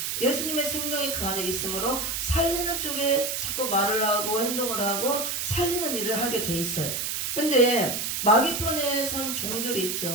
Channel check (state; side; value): noise; right; hiss, 2 dB below the sound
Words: 예수님의 생명이 그 안에 있으므로 살리는 쪽에 자꾸 말을 하고 행동을 하고 살리는 일을 하게 돼 있어요. 근데 마귀편에 선 종들이